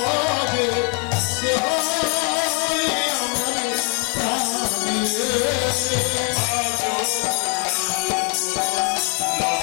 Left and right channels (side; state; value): right; quieter; 38.4 dB